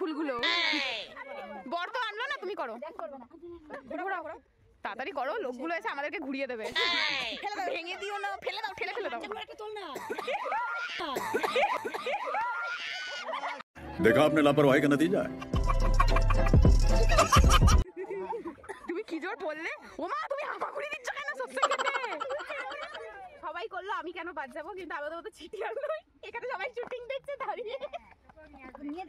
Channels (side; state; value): both; identical; correlation 1.00